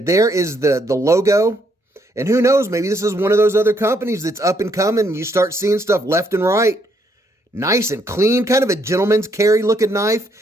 there is the logo. And who knows, maybe this is one of those other companies that's up and coming. You start seeing stuff left and right. Nice and clean, kind of a gentleman's carry looking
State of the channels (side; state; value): both; normal; correlation 0.72